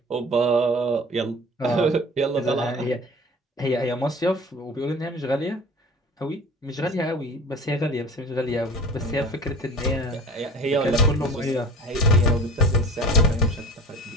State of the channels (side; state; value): both; normal; correlation 0.40